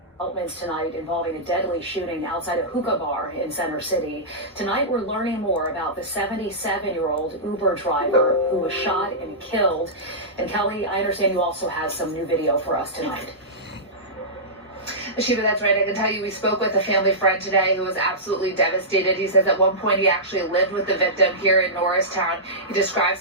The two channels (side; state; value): both; normal; correlation -0.16